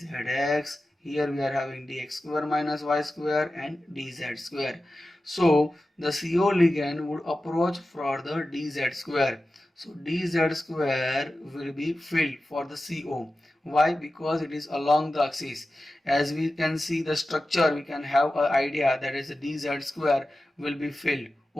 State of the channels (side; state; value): both; normal; correlation 0.94